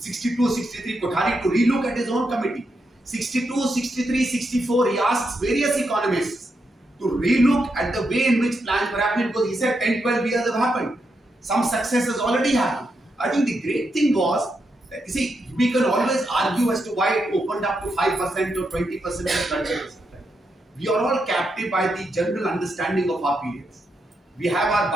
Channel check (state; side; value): normal; both; correlation 0.83